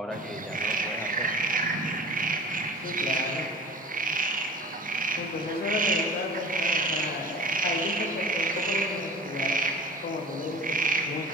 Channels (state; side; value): normal; both; correlation 0.40